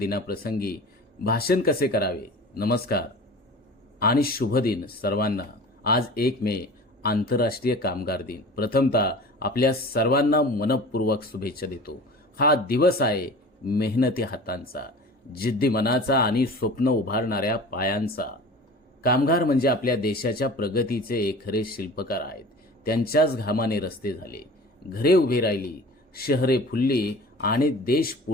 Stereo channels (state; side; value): normal; both; correlation 0.40